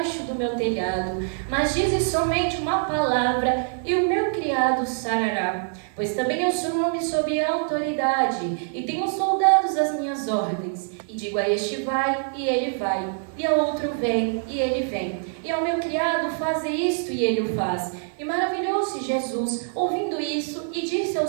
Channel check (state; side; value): silent; left; 62 dB below the other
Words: do meu telhado, mas dizes somente uma palavra e o meu criado sarará. Pois também eu sou um homem sob autoridade e tenho soldados às minhas ordens. E digo a este vai e ele vai, e a outro vem e ele vem, e ao meu criado faze isto e ele o faz. E maravilhou-se Jesus ouvindo isso e disse